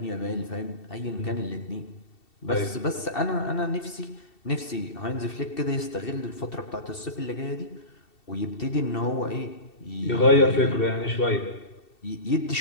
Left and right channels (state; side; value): late; right; 2.7 ms